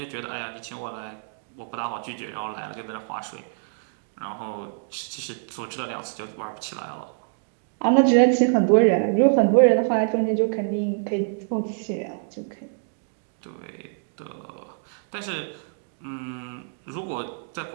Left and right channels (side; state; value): left; silent; digital silence